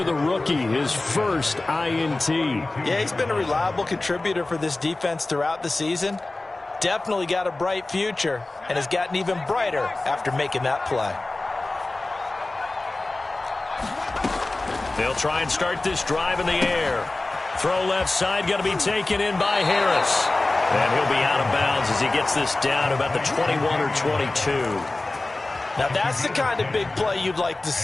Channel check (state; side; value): quieter; right; 3.0 dB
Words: the rookie, his first INT. Yeah, he's been a reliable contributor for this defense throughout the season. Definitely got a bright future and has gotten even brighter after making that play. They'll try and start this drive in the air. Throw left side, going to be taken in by Harris. And he'll be out of bounds as he gets this down to about the 21 or 22. Now that's the kind of big play you'd like to